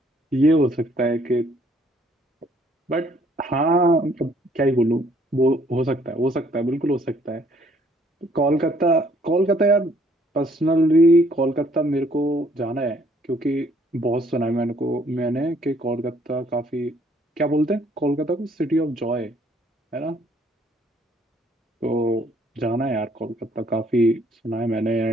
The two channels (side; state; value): both; normal; correlation 0.64